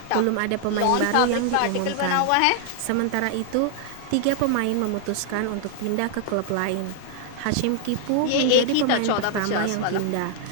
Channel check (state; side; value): different; both; correlation 0.00